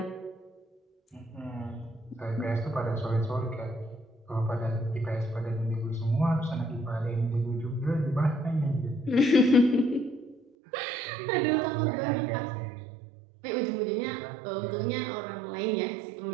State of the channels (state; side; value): drops out; left; at 10.4 s